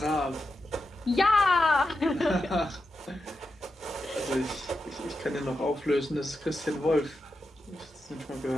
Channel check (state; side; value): normal; both; correlation 0.88